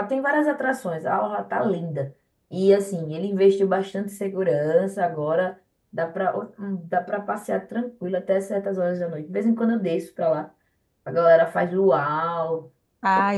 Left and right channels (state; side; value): identical; both; correlation 1.00